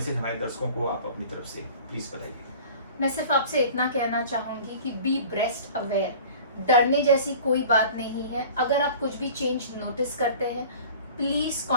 हमारे दर्शकों को आप अपनी तरफ से प्लीज बताइए। मैं सिर्फ आपसे इतना कहना चाहूँगी कि बी ब्रेस्ट अवेयर। डरने जैसी कोई बात नहीं है। अगर आप कुछ भी चेंज नोटिस करते हैं, please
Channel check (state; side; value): inverted; both; correlation -0.43